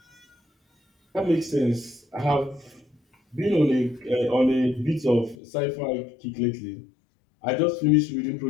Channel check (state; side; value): drops out; right; at 5.4 s